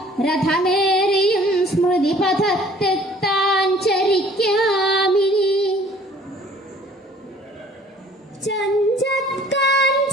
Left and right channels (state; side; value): normal; both; correlation 0.54